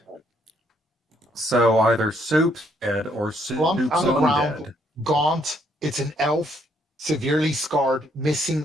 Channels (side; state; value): both; normal; correlation 0.70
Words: So either Soup's dead or Slumped Soup's on the ground, undead. gaunt. It's an elf, severely scarred,